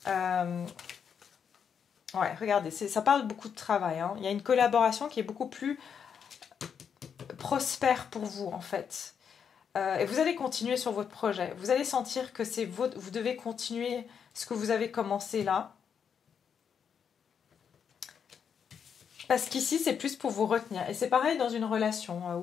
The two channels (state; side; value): quieter; right; 7.3 dB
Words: Ouais, regardez, ça parle beaucoup de travail. Hein. Il y a une collaboration qui est beaucoup plus prospère pour vous, en fait. Et vous allez continuer sur votre projet. Vous allez sentir que vous devez continuer ce que vous avez commencé là. Parce qu'ici, c'est plus pour vous retenir. Et c'est pareil dans une relation